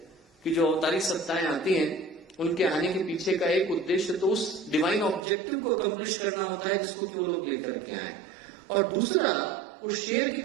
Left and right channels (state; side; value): drops out; left; at 5.2 s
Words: कि जो अवतारी सत्ताएं आती हैं उनके आने के पीछे का एक उद्देश्य तो उस डिवाइन ऑब्जेक्टिव को अकम्प्लिश करना होता है जिसको कि वो लोग लेकर के आए, और दूसरा उस शेर की